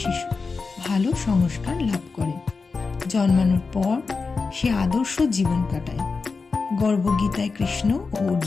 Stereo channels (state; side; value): quieter; right; 4.5 dB